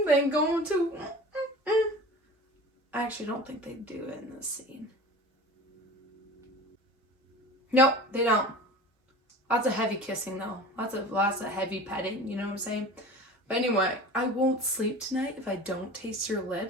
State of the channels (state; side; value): normal; both; correlation 0.38